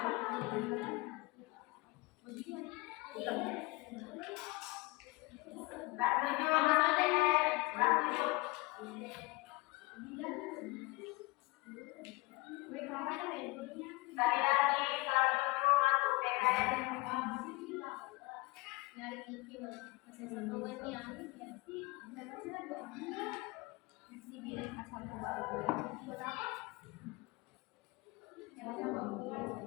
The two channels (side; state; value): right; quieter; 23.8 dB